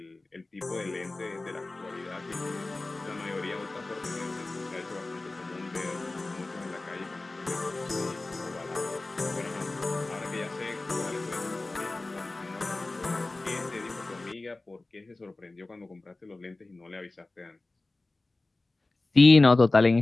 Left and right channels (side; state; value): right; quieter; 3.1 dB